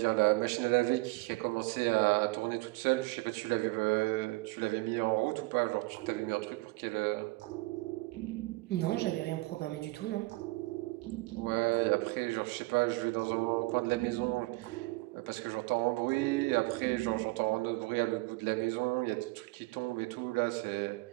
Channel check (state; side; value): quieter; left; 23.3 dB